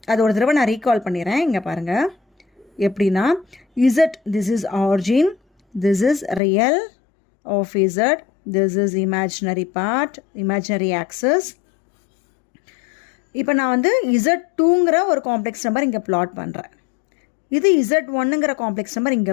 அது ஒரு தடவை நான் ரீகால் பண்ணிடுறேன். இங்கே பாருங்கள் எப்படின்னா, Z this is origin, this is real of Z, this is imaginary part, imaginary axis. இப்போ நான் வந்து Z2ங்கிற ஒரு காம்ப்ளெக்ஸ் நம்பர் இங்கே பிளாட் பண்ணுறேன். இது Z1ங்கிற காம்ப்ளெக்ஸ் நம்பர்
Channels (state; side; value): drops out; right; at 6.4 s